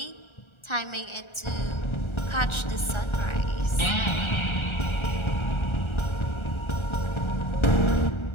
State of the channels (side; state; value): right; late; 1.3 ms